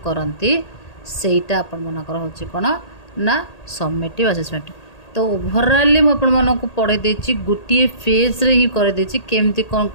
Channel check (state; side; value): late; right; 1.8 ms